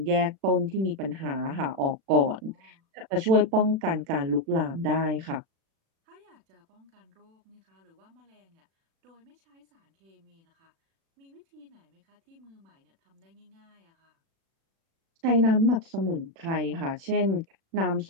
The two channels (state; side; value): late; left; 36 ms